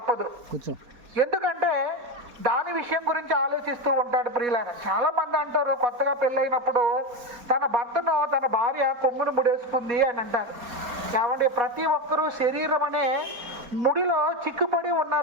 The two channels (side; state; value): left; late; 4.1 ms